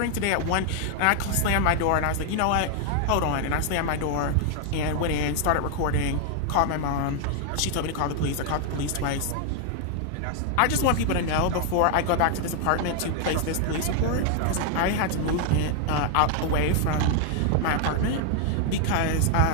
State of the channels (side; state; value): both; different; correlation 0.00